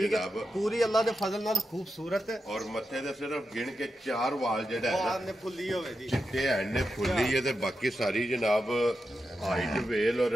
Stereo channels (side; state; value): both; normal; correlation 0.88